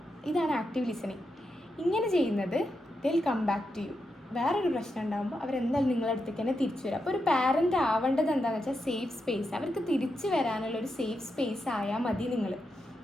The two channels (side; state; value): both; normal; correlation 0.85